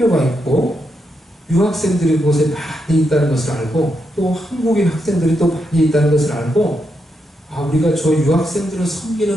있고 유학생들이 그곳에 많이 있다는 것을 알고 또 한국인 학생들이 또 많이 있다는 것을 알고 우리가 저 유학생들을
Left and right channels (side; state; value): both; normal; correlation 0.82